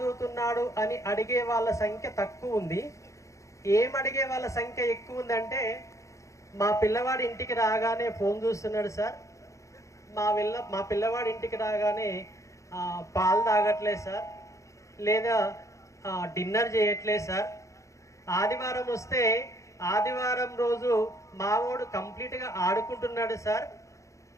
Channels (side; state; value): right; late; 0.15 ms